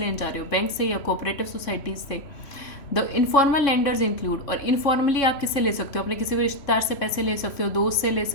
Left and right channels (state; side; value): late; right; 3.1 ms